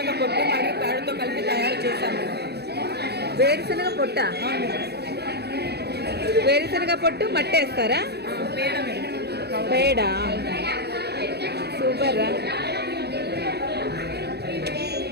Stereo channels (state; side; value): late; left; 0.47 ms